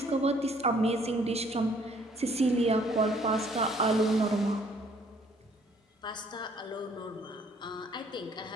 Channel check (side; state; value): both; normal; correlation 0.61